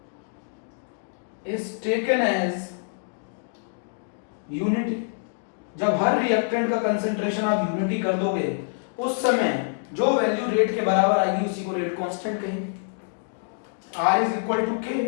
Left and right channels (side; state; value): right; silent; digital silence